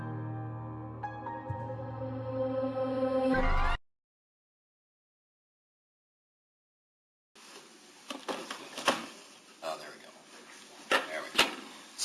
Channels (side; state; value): both; identical; correlation 1.00